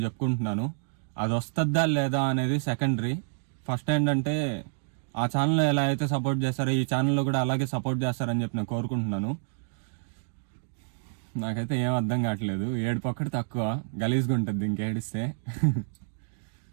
చెప్పుకుంటున్నాను. అది వస్తుందా లేదా అనేది సెకండరీ. ఫస్ట్ ఏంటంటే ఆ ఛానల్లో ఎలా అయితే సపోర్ట్ చేస్తారో ఈ ఛానల్లో కూడా అలాగే సపోర్ట్ చేస్తారని చెప్పి నేను కోరుకుంటున్నాను. నాకైతే ఏం అర్థం కావట్లేదు. ఏడుపు ఒక్కటి తక్కువ, గలీజ్గా ఉంటుంది ఇంకేడిస్తే.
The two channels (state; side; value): silent; left; digital silence